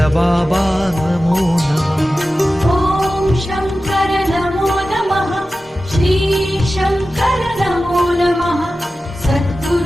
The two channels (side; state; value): both; normal; correlation 0.94